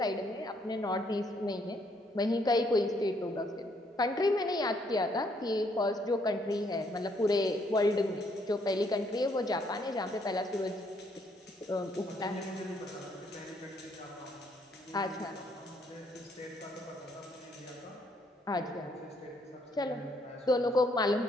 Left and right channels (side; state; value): both; normal; correlation 0.70